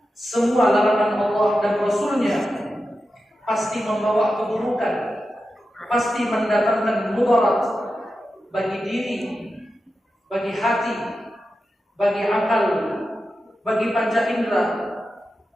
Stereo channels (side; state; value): both; normal; correlation 0.91